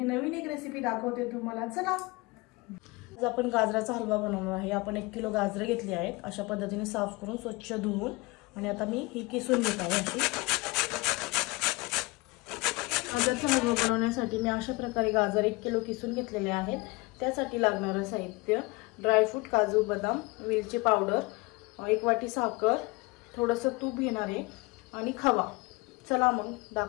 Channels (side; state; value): right; quieter; 24.3 dB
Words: नवीन एक रेसिपी दाखवते तुम्हाला। चला आज आपण गाजराचा हलवा बनवणार आहे। आपण 1 किलो गाजरे घेतली आहेत, अशा पद्धतीने साफ करून स्वच्छ धुवून, आणि आता मी ही किसून घेत आहे। अशी गाजराचा हलवा बनवण्यासाठी मी अशा प्रकारे गाजर 1 किलो किसून घेतलेले आहेत। त्यासाठी लागणारे साहित्य: ड्रायफ्रूट, काजू, बदाम, वेलची पावडर, 1 वाटी साखर, थोडंसं तूप घेणार आहे आणि खवा। चला मग